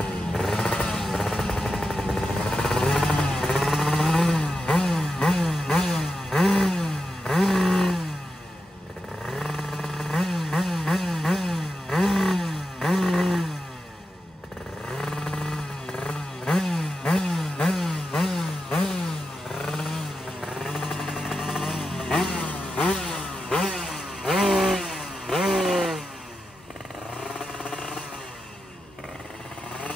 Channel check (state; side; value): normal; both; correlation 0.89